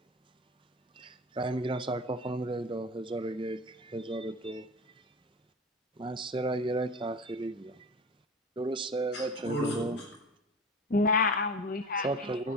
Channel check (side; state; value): both; normal; correlation 0.34